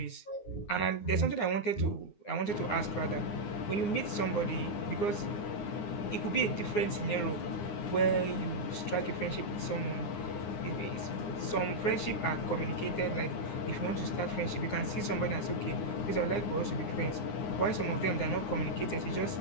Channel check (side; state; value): right; late; 9.7 ms